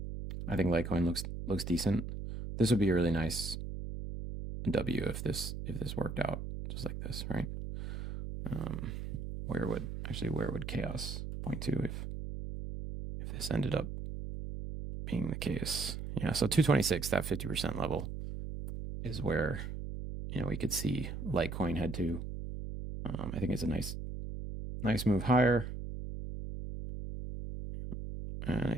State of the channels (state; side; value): noise; right; hum, 6 dB below the sound